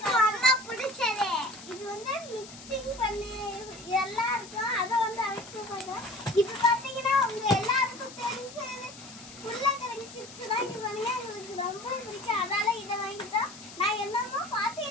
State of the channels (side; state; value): left; noise; hiss, 16 dB below the sound